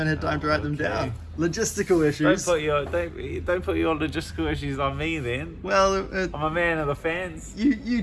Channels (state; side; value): identical; both; correlation 1.00